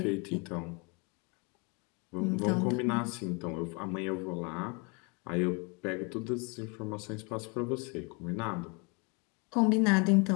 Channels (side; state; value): right; quieter; 31.9 dB